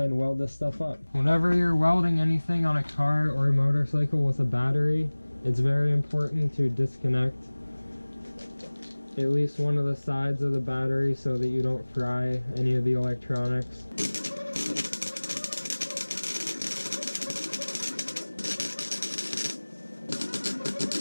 and weld this stuff up. Whenever you're welding anything on a car or a motorcycle with a battery, it's very important to disconnect at least one of the sides of the battery so that you don't fry any of the electronics.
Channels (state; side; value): inverted; both; correlation -1.00